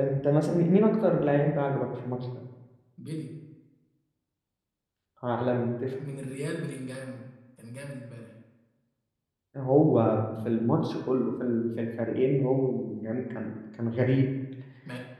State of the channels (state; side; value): identical; both; correlation 1.00